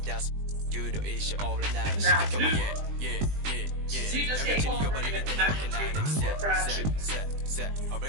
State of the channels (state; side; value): late; left; 20 ms